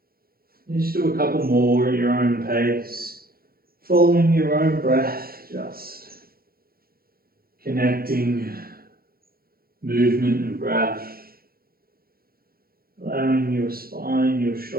Just do a couple more at your own pace, following your own breath, just connecting movement and breath, allowing your spine, your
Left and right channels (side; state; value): left; late; 0.44 ms